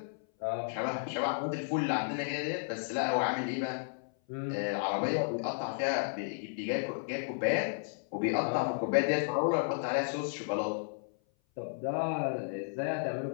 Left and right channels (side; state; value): right; silent; 56 dB below the other